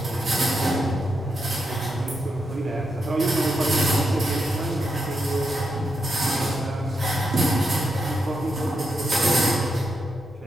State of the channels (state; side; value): noise; left; rumble, 29 dB below the sound